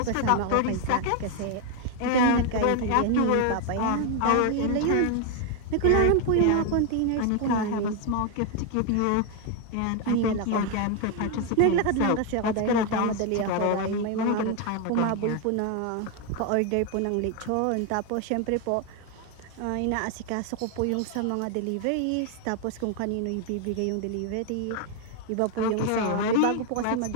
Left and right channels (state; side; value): different; both; correlation 0.01